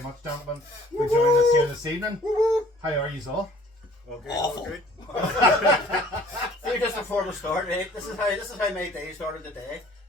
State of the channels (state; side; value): normal; both; correlation 0.53